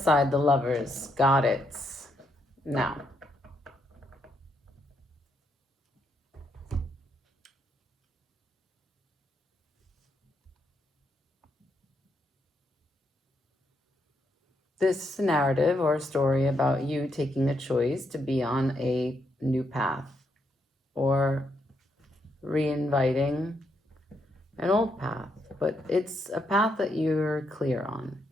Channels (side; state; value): both; normal; correlation 0.78